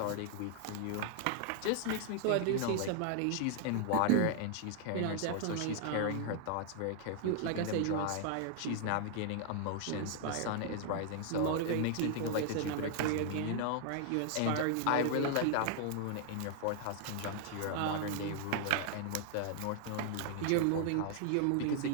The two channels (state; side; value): different; both; correlation 0.00